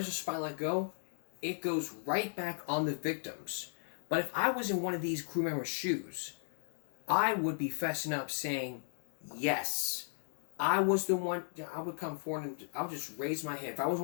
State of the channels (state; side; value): silent; right; digital silence